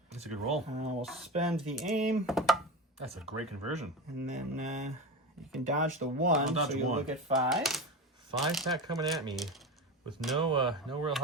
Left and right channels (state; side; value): normal; both; correlation 0.24